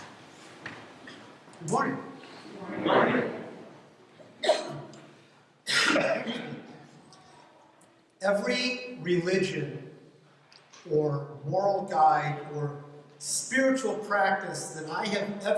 Good morning. Good morning. Every religion or moral guide or spiritual practice that I have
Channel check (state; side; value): identical; both; correlation 1.00